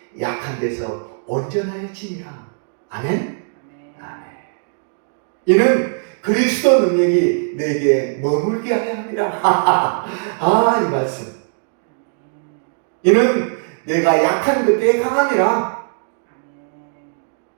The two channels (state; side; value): silent; left; digital silence